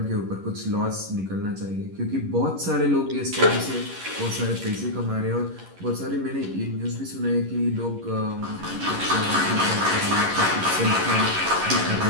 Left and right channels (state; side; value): late; left; 11 ms